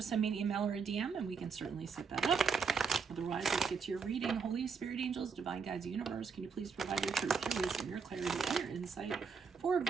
send me an email or a DM and we can certainly set that up. Otherwise, let's get to your reading. Holy Spirit, angels, divine guides, universe, can you please provide your truth, your wisdom, your clarity, and your insight for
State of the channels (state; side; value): quieter; left; 5.6 dB